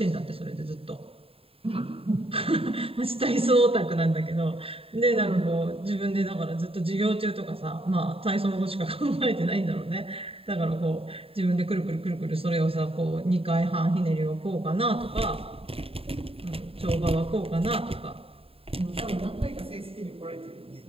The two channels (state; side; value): late; left; 0.27 ms